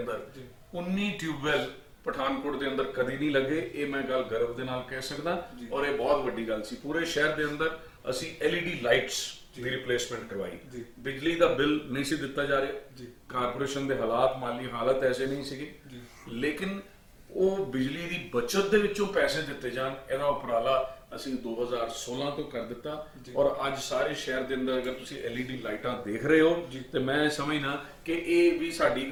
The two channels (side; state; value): both; identical; correlation 1.00